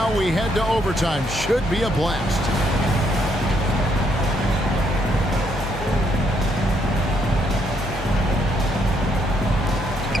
we head to overtime. Should be a blast.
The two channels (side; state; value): both; normal; correlation 0.73